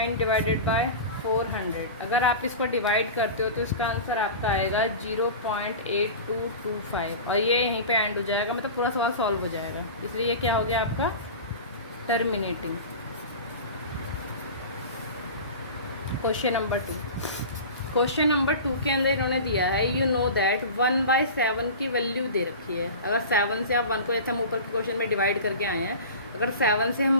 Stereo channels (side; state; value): both; inverted; correlation -0.32